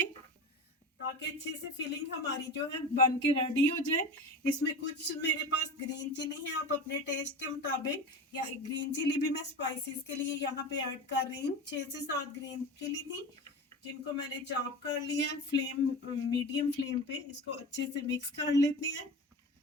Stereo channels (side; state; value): both; normal; correlation 0.29